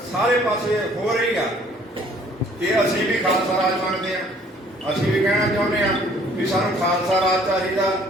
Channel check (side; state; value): both; normal; correlation 0.58